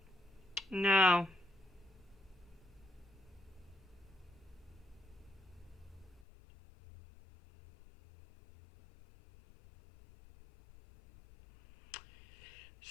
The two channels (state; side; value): drops out; right; at 6.2 s